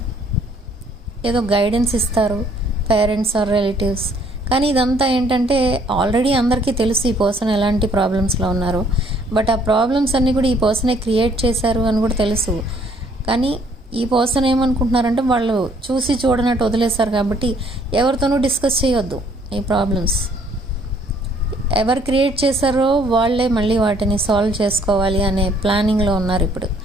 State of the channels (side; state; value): both; normal; correlation 0.63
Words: ఏదో గైడెన్స్ ఇస్తారు, పేరెంట్స్ ఆర్ రిలేటివ్స్. కానీ ఇదంతా ఏంటంటే, ఆల్రెడీ అందరికీ తెలుసు ఈ పర్సన్ ఎలాంటి ప్రాబ్లమ్స్లో ఉన్నారు. బట్ ఆ ప్రాబ్లమ్స్ అన్నీ కూడా ఈ పర్సనే క్రియేట్ చేశారు అని కూడా తెలుసు. కానీ ఈ పర్సన్ ఏమనుకుంటున్నారంటే, వాళ్ళు చూసి చూడనట్టు వదిలేశారు కాబట్టి ఎవరితోనూ డిస్కస్ చేయొద్దు ఈ ప్రాబ్లమ్స్. ఎవరు క్రియేట్ చేశారో వాళ్ళే మళ్ళీ వాటిని సాల్వ్ చేసుకోవాలి అనే ప్లానింగ్లో ఉన్నారు ఇప్పుడు.